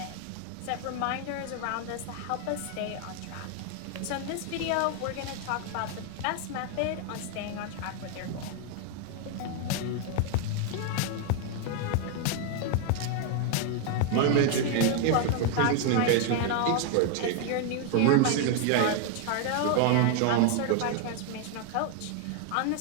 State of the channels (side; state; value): both; different; correlation 0.01